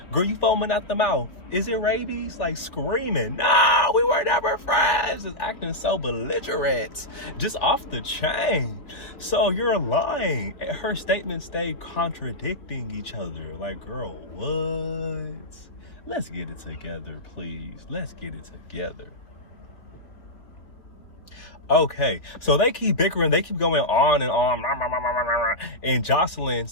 Girl, you foaming at the mouth. Is it rabies? Like, screaming, no, we were never friends. Just acting so belligerent. Just off the chain. So you're lying. Her statements stay contradicting each other. Like, girl, what? Let's get it together, please. Let's get it together. Okay, so they keep bickering. They keep going on and on. And Joseline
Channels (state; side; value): late; right; 3.6 ms